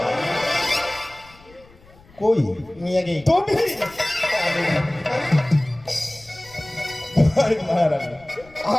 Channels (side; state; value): left; noise; rumble, 25 dB below the sound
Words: কই নিয়ে গেই তুমি? আরে মহারানী,